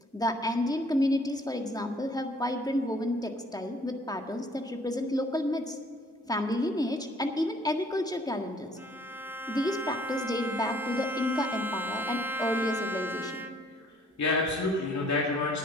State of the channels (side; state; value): both; normal; correlation 0.60